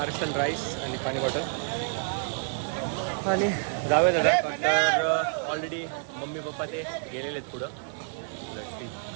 राईस आणि पाणी बॉटल आणि जाऊया दादा. तर ऑलरेडी मम्मी पप्पा ते गेलेले आहेत पुढं.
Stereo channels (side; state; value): left; silent; digital silence